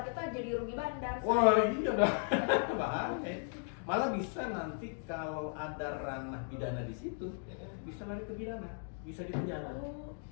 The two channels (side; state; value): right; silent; 54 dB below the other